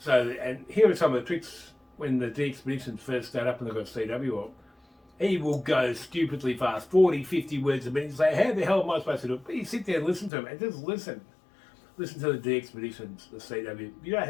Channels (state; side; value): drops out; right; at 10.3 s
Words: And here are some of the tricks when the DXpeditions first start up and they've got CW up. He will go stupidly fast, 40, 50 words a minute. You say, how the hell am I supposed to do it? But you sit there and listen to him, and just listen listen to the DXpeditions, the CW. You don't